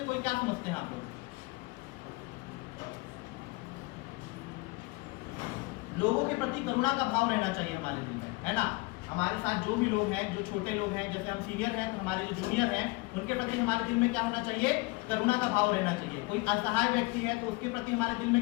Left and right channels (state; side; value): quieter; right; 24.7 dB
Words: कोई क्या समझते हैं आप लोग? लोगों के प्रति करुणा का भाव रहना चाहिए हमारे दिल में, है ना। हमारे साथ जो भी लोग हैं, जो छोटे लोग हैं, जैसे हम सीनियर हैं तो हमारे जो जूनियर हैं उनके प्रति हमारे दिल में क्या होना चाहिए, करुणा का भाव रहना चाहिए। कोई असहाय व्यक्ति है तो उसके प्रति हमारे दिल में